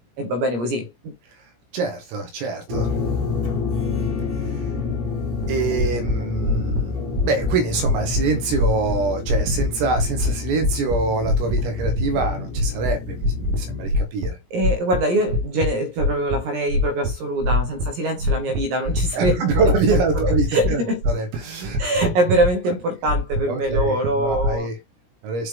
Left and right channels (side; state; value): left; late; 17 ms